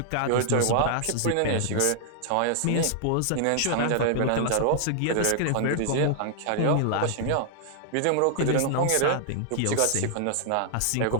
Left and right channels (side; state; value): both; different; correlation -0.01